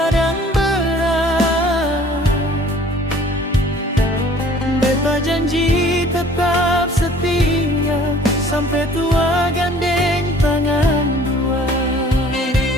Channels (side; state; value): both; normal; correlation 0.52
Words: berat. Beta janji tetap setia sampai tua gandeng tangan dua.